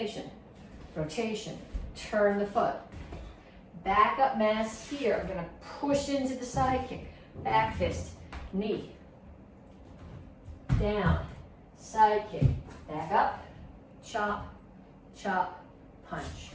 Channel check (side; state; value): both; identical; correlation 1.00